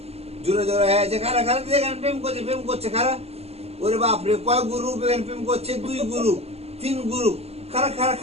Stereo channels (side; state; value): left; late; 0.30 ms